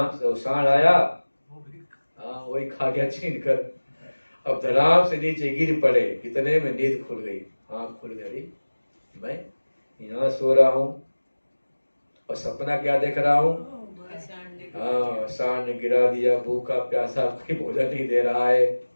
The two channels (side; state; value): both; inverted; correlation -1.00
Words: तो सांड आया, हाँ वही खा गया छीन कर। अब धड़ाम से नीचे गिर पड़े, इतने में नींद खुल गई, आँख खुल गई, मैं यहाँ सो रहा हूँ और सपना क्या देख रहा हूँ? हाँ, सांड ने गिरा दिया, भूखा प्यासा, कोई भोजन नहीं दे रहा है।